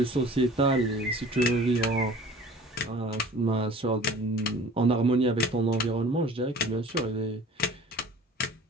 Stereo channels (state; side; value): normal; both; correlation 0.45